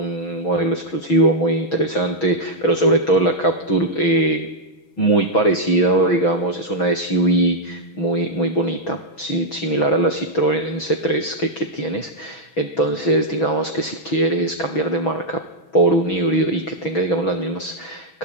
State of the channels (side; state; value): right; late; 6.2 ms